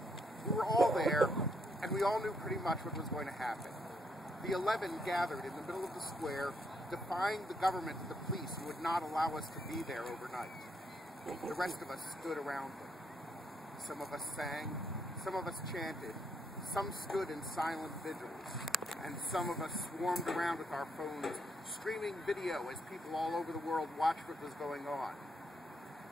We were all there, and we all knew pretty much what was going to happen. The 11 gathered in the middle of the square, defying the government and the police who would not allow us to be there overnight. The rest of us stood around them. Some of us sang, some of us chanted, some stood in silent vigils, and some of us swarmed around with our phones, streaming video as people all over the world watched what was going on.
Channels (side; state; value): both; normal; correlation 0.76